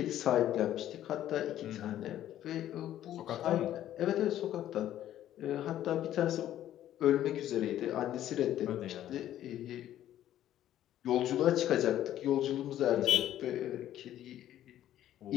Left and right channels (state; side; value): quieter; right; 12.2 dB